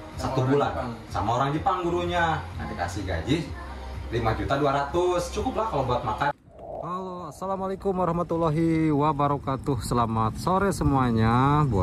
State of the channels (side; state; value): both; identical; correlation 1.00